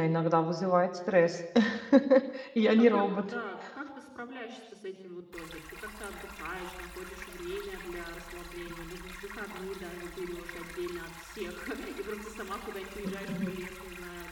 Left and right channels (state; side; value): identical; both; correlation 1.00